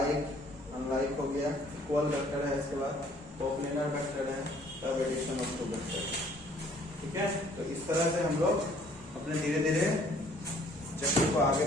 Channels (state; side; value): normal; both; correlation 0.59